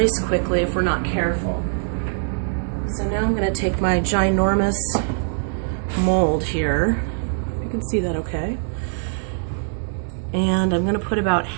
quickly if we're not careful. So now I'm going to take my ginormous mold here. You can see that okay. And I'm going to put about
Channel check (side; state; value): left; silent; 62 dB below the other